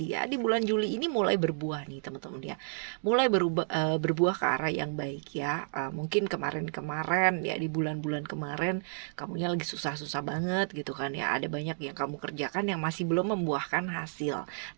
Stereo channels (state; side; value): silent; left; digital silence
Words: ya di bulan Juli ini, mulai berbuah nih teman-teman ya, mulai berbuah ke arah yang baik ya. Mungkin kemarin-kemarin ya, di bulan-bulan kemarin kamunya lagi susah-susah banget gitu kan ya, ada banyak yang kamu kerjakan yang masih belum membuahkan hasil.